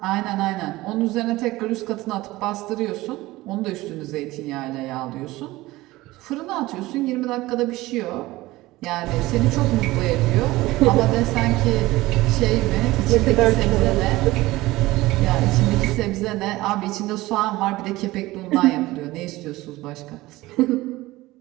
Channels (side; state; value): left; quieter; 18.8 dB